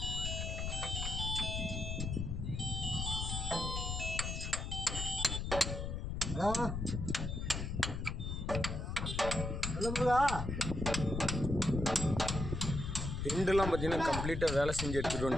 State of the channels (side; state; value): left; noise; rumble, 3 dB below the sound